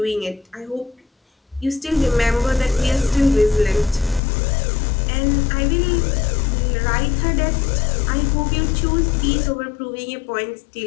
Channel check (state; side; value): drops out; right; at 4.2 s